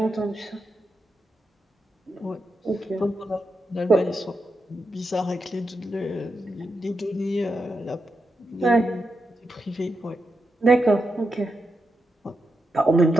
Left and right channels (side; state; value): both; normal; correlation 0.86